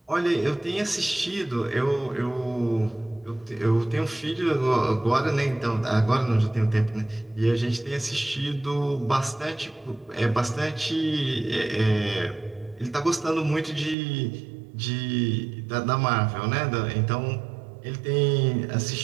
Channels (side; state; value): left; drops out; at 14.0 s